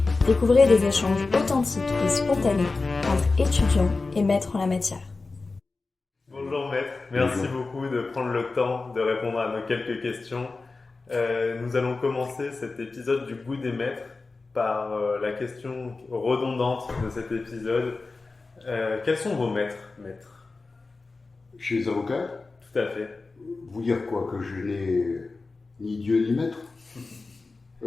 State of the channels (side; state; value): right; quieter; 3.8 dB